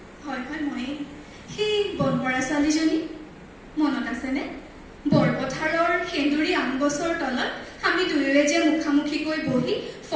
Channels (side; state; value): both; identical; correlation 1.00